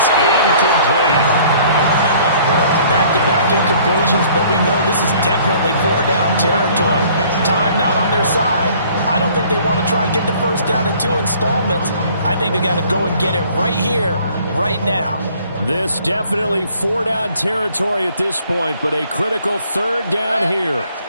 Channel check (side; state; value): both; inverted; correlation -0.56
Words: incomplete. Back-to-back incompletions, but we know this is definitely 4-down territory. Time not on their side. I don't think they want to try and get the first down in 2 installments. I think they got to go and get it right here, right now. This definitely 4-down territory at this point, but a critical 3rd down here.